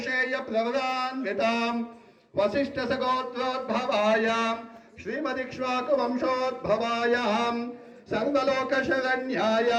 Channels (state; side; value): identical; both; correlation 1.00